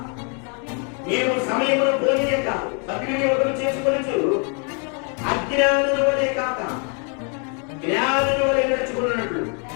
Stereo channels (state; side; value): quieter; right; 38.7 dB